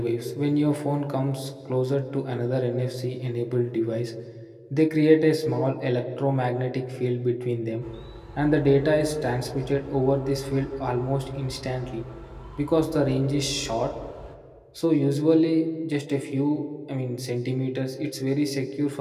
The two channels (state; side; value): identical; both; correlation 1.00